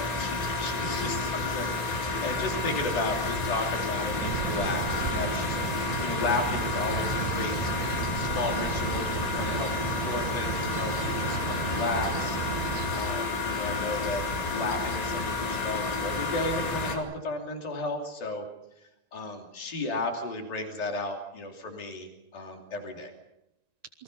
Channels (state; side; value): late; right; 1.9 ms